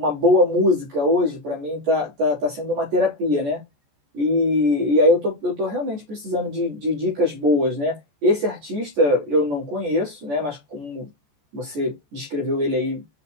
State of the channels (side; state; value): left; late; 14 ms